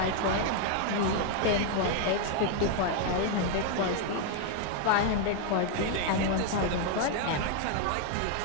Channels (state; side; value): different; both; correlation 0.01